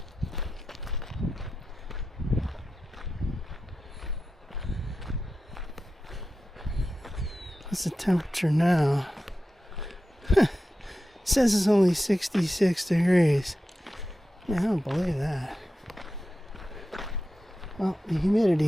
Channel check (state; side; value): normal; both; correlation 0.92